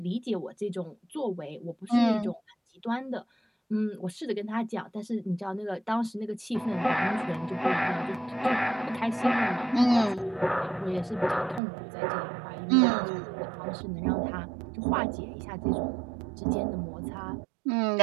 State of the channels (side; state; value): left; drops out; at 11.6 s